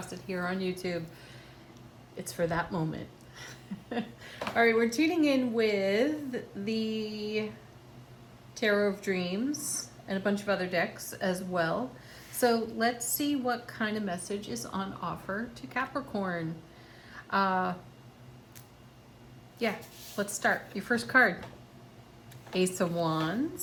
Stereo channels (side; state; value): both; identical; correlation 1.00